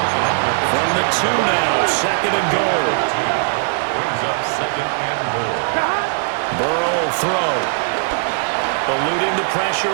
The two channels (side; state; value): left; silent; digital silence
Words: From the 2 now, second and goal. Brings up second and goal. Burrow will throw. Eluding the pressure